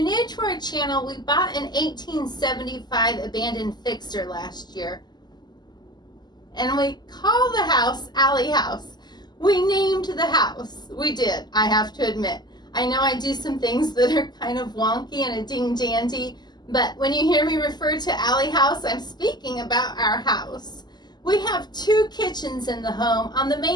new to our channel, we bought an 1875 abandoned fixer last year. And we call the house Alley House. We named the house. We did, I have to admit. I know I do some things that are kind of wonky and a ding-dandy, but when you hear me refer to Alley House, I'm speaking about our house. We have two kitchens in the home. On the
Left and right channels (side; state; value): right; late; 0.21 ms